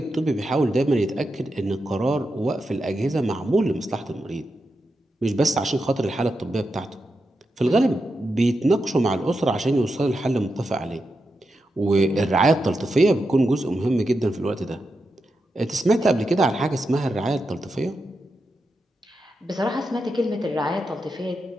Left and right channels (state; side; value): normal; both; correlation 0.87